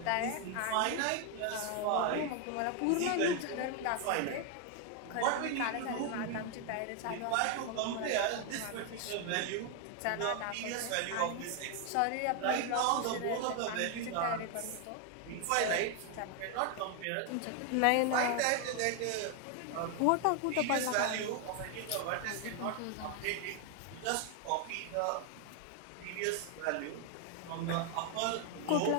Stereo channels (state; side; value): different; both; correlation 0.01